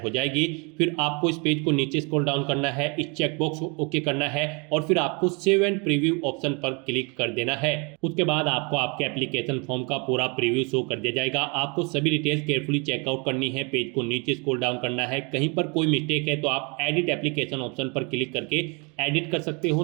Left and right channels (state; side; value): quieter; left; 31.7 dB